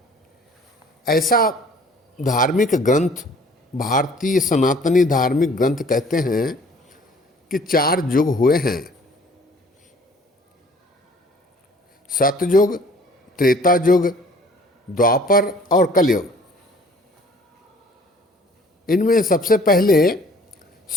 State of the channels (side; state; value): both; normal; correlation 0.53